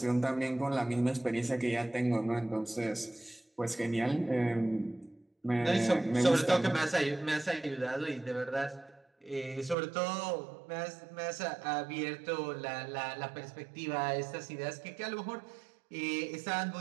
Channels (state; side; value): drops out; left; at 9.8 s